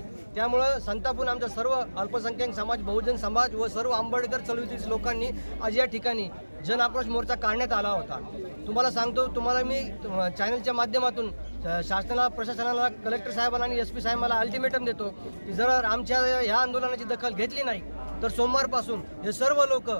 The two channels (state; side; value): inverted; both; correlation -1.00